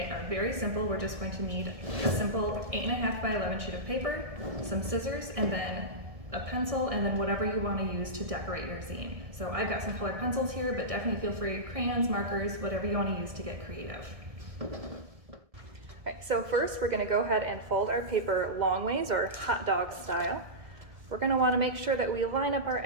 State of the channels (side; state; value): left; late; 1.6 ms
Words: are very simple. We're just going to need a simple 8.5 by 11 sheet of paper, some scissors, and then a pencil, and then whatever you want to use to decorate your zine. So I've got some colored pencils here, but definitely feel free, crayons, markers, whatever you want to use to get creative. Alright, so first we're going to go ahead and fold our paper long ways, or hot dog style. We're going to want to make sure that we line up our